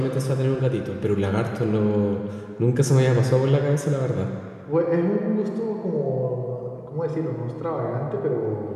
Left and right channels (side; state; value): both; identical; correlation 1.00